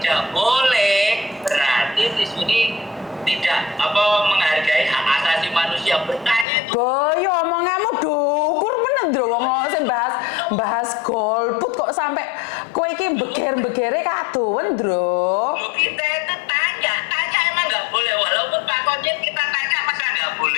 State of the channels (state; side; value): drops out; right; at 6.5 s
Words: boleh, berarti Miss Juni tidak menghargai hak asasi manusia. Bertanya itu Boyo omonganmu dukur bener lho wong sing bahas golput kok sampai kowe iki beger-begere kadowen, Ndro. Loh, kita itu tanya emang nggak boleh. Walaupun Pak Konjen kita tanya masa nggak